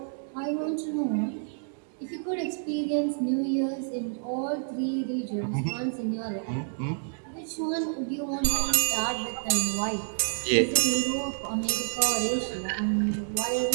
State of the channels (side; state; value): left; silent; digital silence